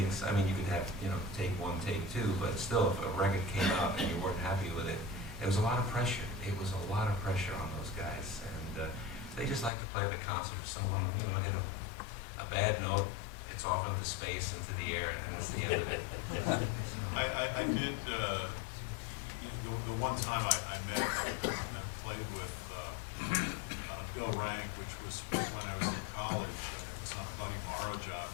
I mean, you could have take one, take two, but still, if a record came out and you weren't happy with it, it was a lot of pressure. It was a lot of pressure on those guys, and they just like to play the concert. If someone hit a bad note, it's off into space, into the air, and that's the end of it. I did, the one time I met and played with Bill Rank, which was when I was in college, and it was on a Buddy Morrow job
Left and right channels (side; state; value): right; drops out; at 9.7 s